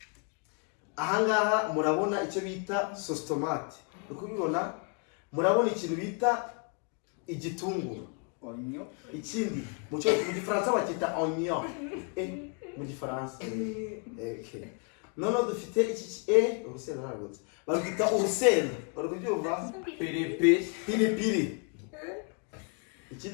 Ahangaha murabona icyo bita sauce tomate. Ukubibona murabona ikintu bita igitunguru. Onyo. Ikindi mu gifaransa bakita oignon. Mu gifaransa. Okay. Nono dufite iki urusenda ntabwo. Bagita urusenda. Barakubyumva? Pilipili.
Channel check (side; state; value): right; quieter; 37.1 dB